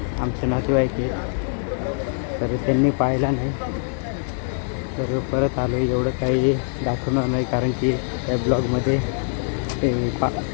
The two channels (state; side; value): silent; right; digital silence